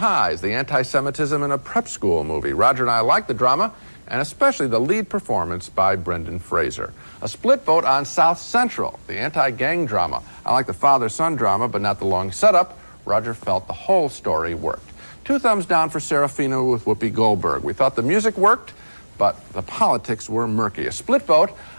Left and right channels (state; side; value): inverted; both; correlation -1.00